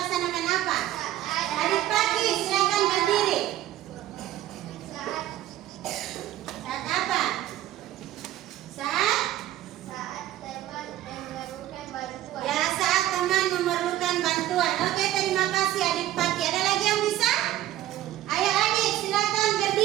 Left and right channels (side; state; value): left; quieter; 13.7 dB